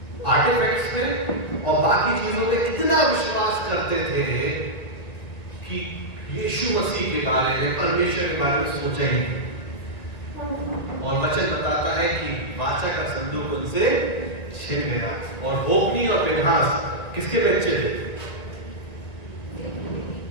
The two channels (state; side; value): late; right; 2.0 ms